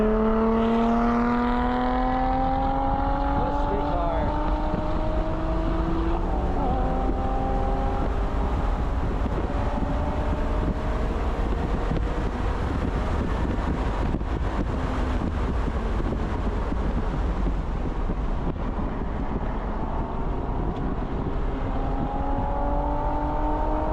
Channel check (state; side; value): identical; both; correlation 1.00